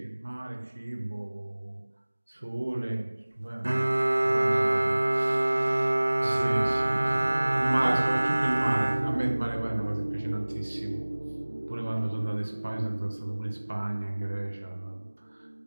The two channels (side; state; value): both; inverted; correlation -1.00